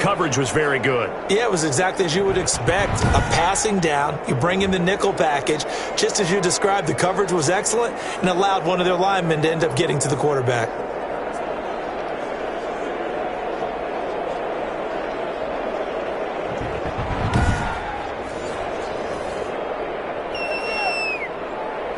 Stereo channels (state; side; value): identical; both; correlation 1.00